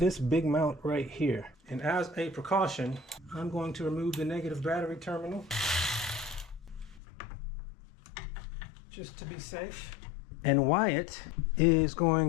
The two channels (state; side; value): drops out; right; at 7.0 s